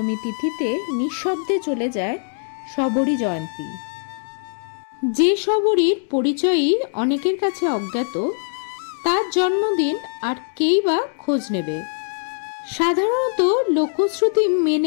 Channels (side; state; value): right; silent; digital silence